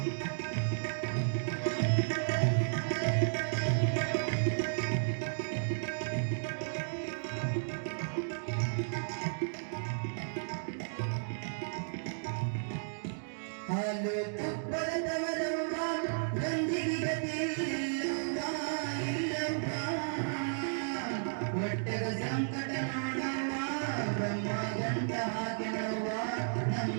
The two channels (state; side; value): silent; left; digital silence